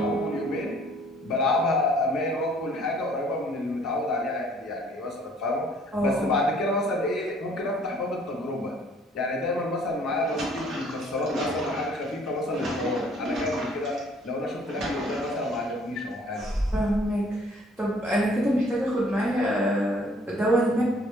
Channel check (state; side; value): normal; both; correlation 0.58